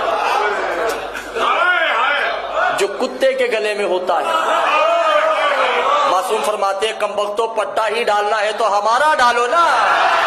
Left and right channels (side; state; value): both; identical; correlation 1.00